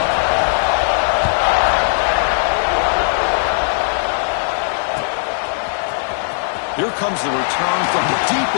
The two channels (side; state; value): right; silent; digital silence